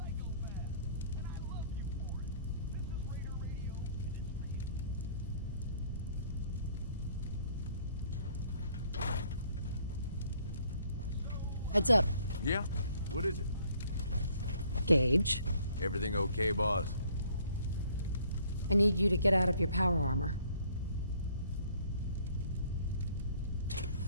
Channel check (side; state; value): both; inverted; correlation -0.61